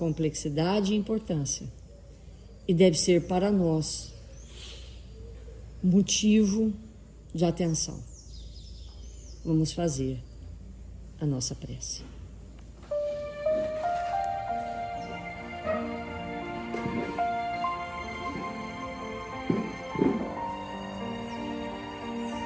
e importância e deve ser para nós motivo de atenção. Vamos fazer a nossa prece.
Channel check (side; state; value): both; identical; correlation 1.00